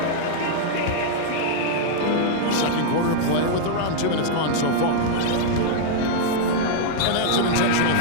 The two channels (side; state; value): both; different; correlation -0.01